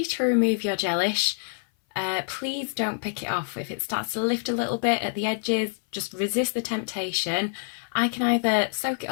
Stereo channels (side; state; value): right; silent; 57 dB below the other